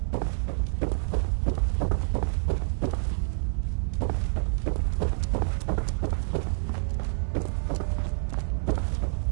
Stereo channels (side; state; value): left; silent; 60 dB below the other